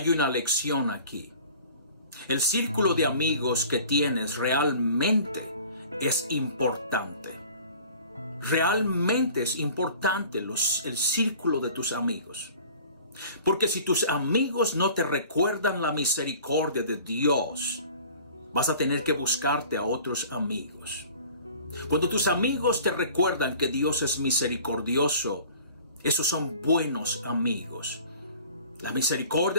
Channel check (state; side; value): inverted; both; correlation -0.46